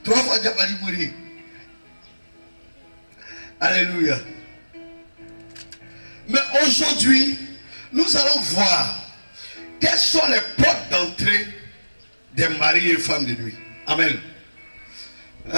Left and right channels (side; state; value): both; inverted; correlation -1.00